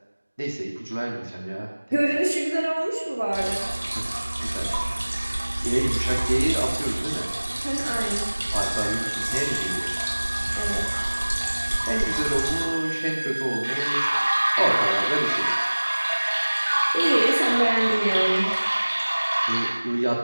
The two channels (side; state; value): both; inverted; correlation -1.00